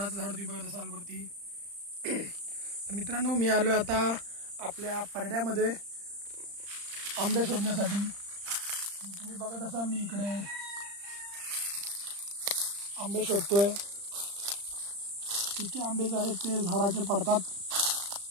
झाड तुम्ही बघत असाल वरती। तर मित्रांनो, मी आलो आता आपल्या परड्यामध्ये आंबे शोधण्यासाठी। तुम्ही बघत असाल मी इकडे आंबे शोधतोय। किती आंबे जे आहेत ते झाडाचे पडतात,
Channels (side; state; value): left; late; 35 ms